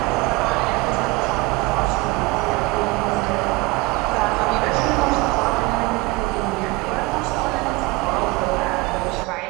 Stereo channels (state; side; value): quieter; left; 23.1 dB